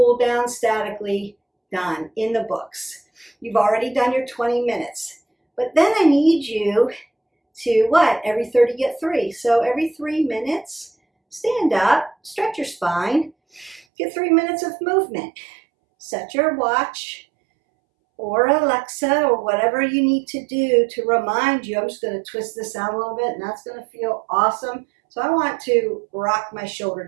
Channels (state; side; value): drops out; left; at 13.9 s